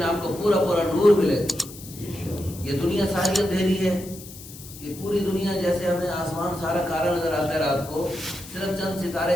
آپ کو پورا نور ملے۔ یہ دنیا ساری اندھیری ہے، یہ پوری دنیا جیسے ہمیں آسمان سارا کالا نظر آتا ہے رات کو، صرف چند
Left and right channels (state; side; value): noise; left; hiss, 16 dB below the sound